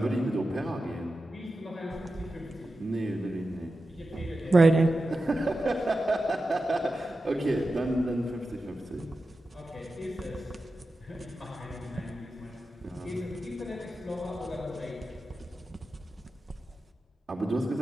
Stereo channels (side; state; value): both; normal; correlation 0.92